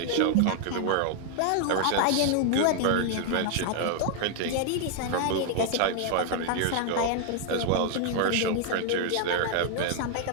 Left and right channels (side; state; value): both; different; correlation 0.00